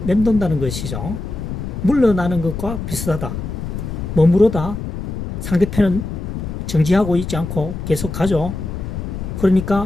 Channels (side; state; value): left; noise; rumble, 6 dB below the sound